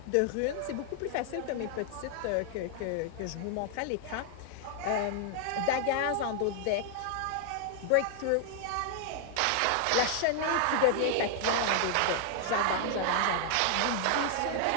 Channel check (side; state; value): both; different; correlation 0.00